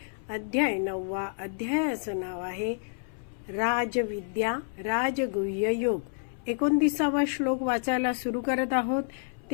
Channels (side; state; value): right; silent; 59 dB below the other